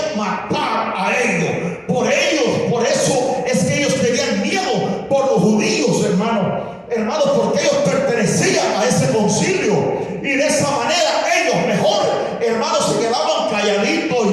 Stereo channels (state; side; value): identical; both; correlation 1.00